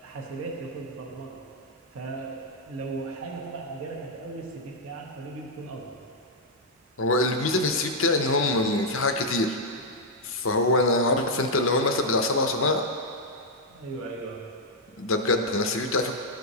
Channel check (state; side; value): normal; both; correlation -0.03